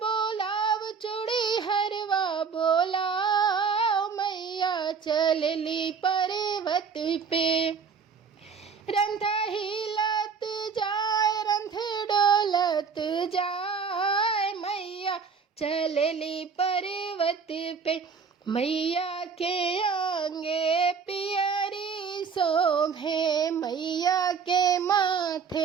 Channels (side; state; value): left; quieter; 5.9 dB